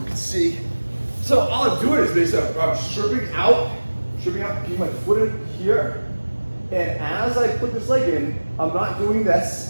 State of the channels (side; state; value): both; inverted; correlation -1.00